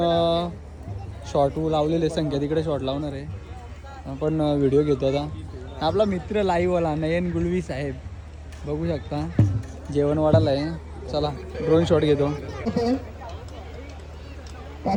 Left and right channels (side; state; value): both; identical; correlation 1.00